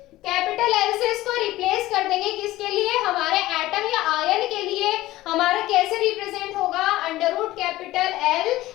कैपिटल एल से इसको रिप्लेस कर देंगे, किसके लिए, हमारे एटम या आयन के लिए। हमारा कैसे रिप्रेजेंट होगा, under root capital L,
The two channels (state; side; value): quieter; right; 16.8 dB